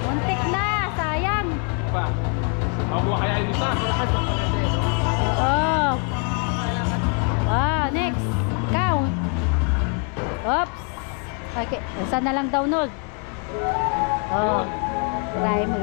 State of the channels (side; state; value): right; quieter; 38.8 dB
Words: Muntik na. Sayang. Pa. Mabuha kaya yung isa. Oh. Ah, next. Count. Oops. Okay. Isa na lang download. Oh. Try mo